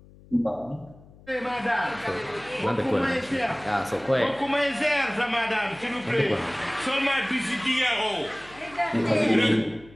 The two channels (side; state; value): left; noise; hum, 23 dB below the sound